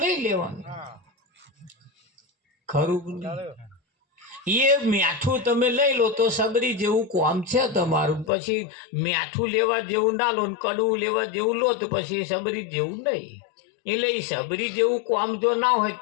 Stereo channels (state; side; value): drops out; right; at 8.3 s